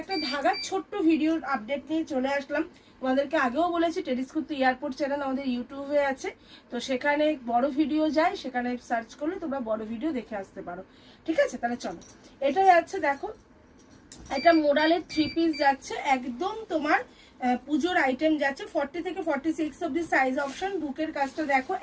ধাগার ছোট্ট ভিডিওর আপডেট নিয়ে চলে আসলাম। তোমাদেরকে আগেও বলেছি টেরিস কুর্তি এয়ারপোর্ট চ্যানেল আমাদের ইউটিউবে আছে, তো সেখানে বড় ভিডিও যায়, সেখানে সার্চ করলে তোমরা বড় ভিডিও দেখে আসতে পারো, ঠিক আছে? তাহলে চলো, এটা যাচ্ছে, দেখো এটা মোডালের 3 পিস যাচ্ছে, একদম তোমার পুজোর আইটেম যাচ্ছে। 40 থেকে 46 অব্দি সাইজ অপশন। বুকের কাজটা দেখো,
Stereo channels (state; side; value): identical; both; correlation 1.00